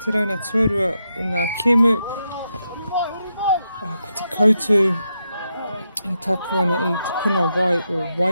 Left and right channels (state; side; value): inverted; both; correlation -0.84